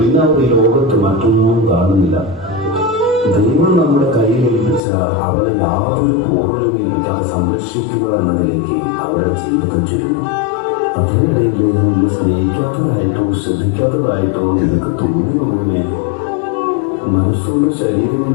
അവർ ഈ ലോകത്ത് മറ്റൊന്നും കാണുന്നില്ല. ദൈവം നമ്മുടെ കയ്യിൽ ഏൽപ്പിച്ച അവരെ യാതൊരു പൂർണ്ണതയില്ലാതെ സംരക്ഷിക്കുക എന്നതിലേക്ക് അവരുടെ ജീവിതം ചുരുങ്ങും. അതിനിടയിൽ നിന്നെ സ്നേഹിക്കാത്തതായിട്ടോ ശ്രദ്ധിക്കാത്തതായിട്ടോ നിനക്ക് തോന്നുന്നതിനെ മനസ്സുകൊണ്ട് ശരീരം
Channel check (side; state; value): right; drops out; at 4.8 s